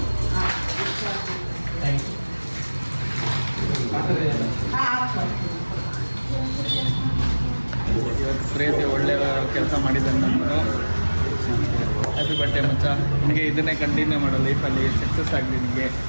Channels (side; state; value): both; inverted; correlation -1.00